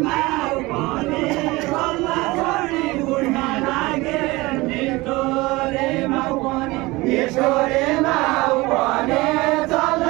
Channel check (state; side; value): quieter; left; 21.7 dB